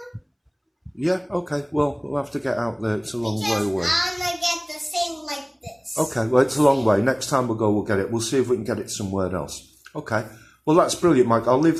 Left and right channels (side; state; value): both; identical; correlation 1.00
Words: Yeah. Okay. Well, we'll have to get out there. It's a long way Because away. I'm gonna get the same like this. Okay. Well, it's a long way. Next time we'll go, we'll get it. We'll see if we can get it somewhere else. Okay. Well, that's brilliant, Mike. I'll leave